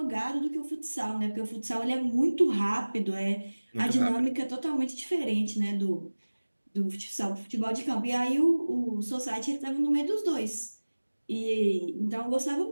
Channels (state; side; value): inverted; both; correlation -1.00